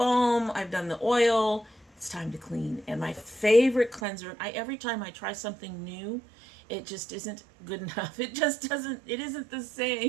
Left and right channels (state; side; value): drops out; left; at 4.0 s